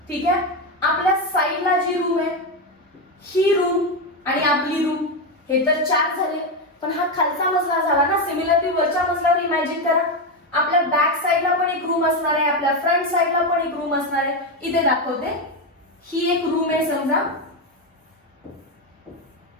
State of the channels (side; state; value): both; normal; correlation 0.10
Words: ठीक आहे, आपल्या साईडला जी रूम आहे, ही रूम आणि आपली रूम, हे तर 4 झाले. पण हा खालचा मजला झाला ना. सिमिलरली वरच्या मजल्यावर इमॅजिन करा, आपल्या बॅक साईडला पण एक रूम असणार आहे, आपल्या फ्रंट साईडला पण एक रूम असणार आहे. इथे दाखवते, ही एक रूम आहे समजा.